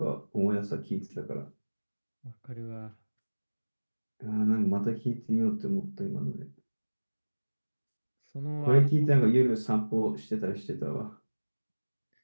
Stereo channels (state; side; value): inverted; both; correlation -1.00